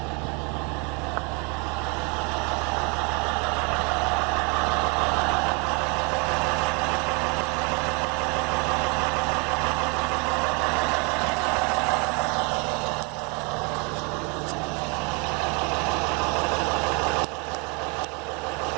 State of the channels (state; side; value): quieter; left; 32.0 dB